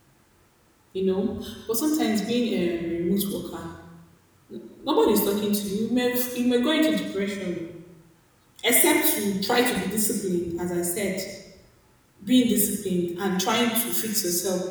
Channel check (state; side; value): identical; both; correlation 1.00